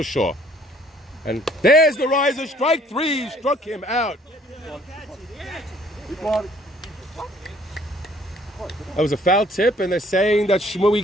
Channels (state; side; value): normal; both; correlation 0.60